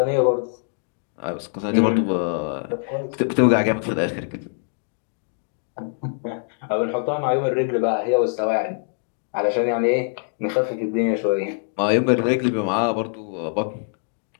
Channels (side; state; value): right; silent; digital silence